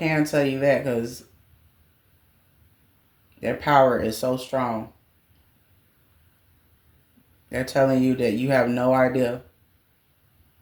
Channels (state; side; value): identical; both; correlation 1.00